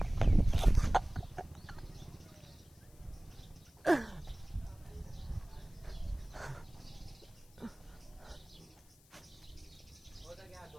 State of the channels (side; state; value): left; noise; hiss, 27 dB below the sound